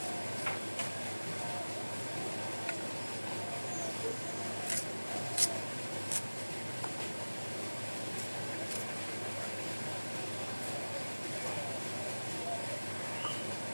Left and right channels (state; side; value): inverted; both; correlation -1.00